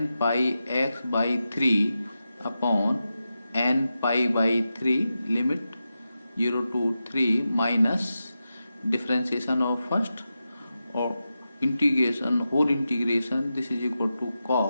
pi x by 3 upon n pi by 3 limit 0 to 3 minus differentiation of first or integration whole integration, this is equal to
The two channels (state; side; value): inverted; both; correlation -0.90